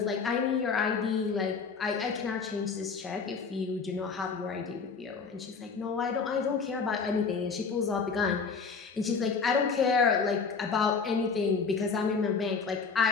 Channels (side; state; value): right; quieter; 5.2 dB